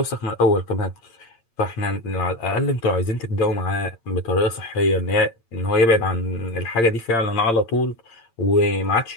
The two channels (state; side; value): late; right; 8.7 ms